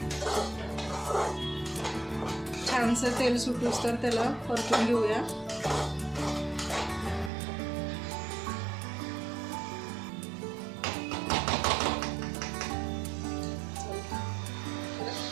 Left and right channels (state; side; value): drops out; left; at 7.3 s